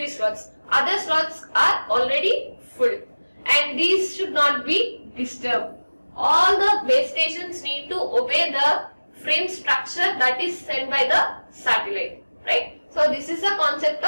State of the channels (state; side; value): inverted; both; correlation -1.00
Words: slots. Other slots are already full, and these should not be disturbed. All the base stations need to obey the frame structure that is sent by the satellite, right? So this is the concept